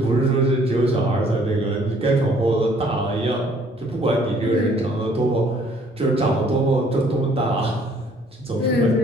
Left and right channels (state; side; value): normal; both; correlation 0.60